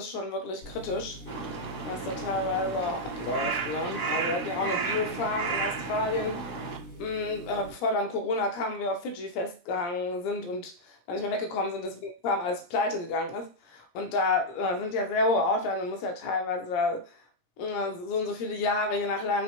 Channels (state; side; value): late; right; 17 ms